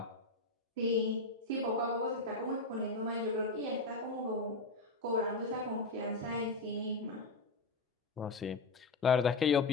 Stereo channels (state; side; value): quieter; right; 3.2 dB